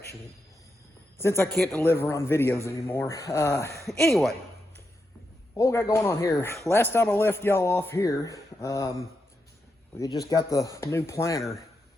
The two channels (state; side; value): normal; both; correlation 0.85